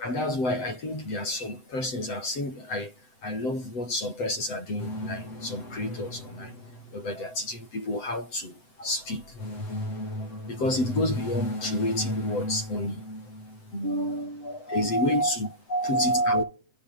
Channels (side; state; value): right; late; 7.9 ms